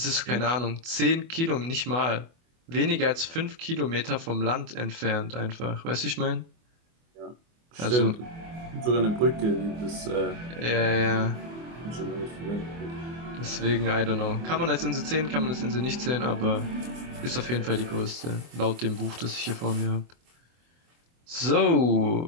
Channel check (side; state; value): left; late; 24 ms